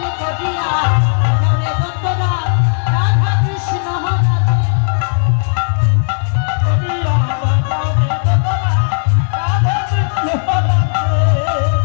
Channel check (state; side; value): silent; right; digital silence